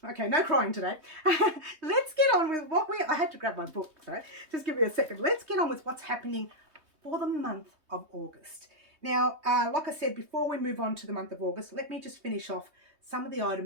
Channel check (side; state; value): left; late; 3.2 ms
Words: Okay, no crying today. Let's get on with I had to grab my book, so just give me a second. Let's get on with what's happening for the month of August. Now, like I said, before we move on to the month of August, let me just finish off some of the